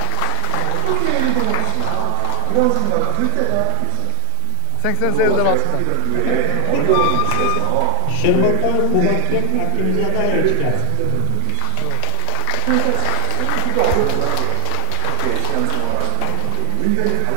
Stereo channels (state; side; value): different; both; correlation 0.00